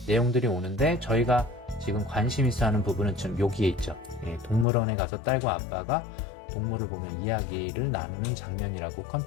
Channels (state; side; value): drops out; right; at 4.7 s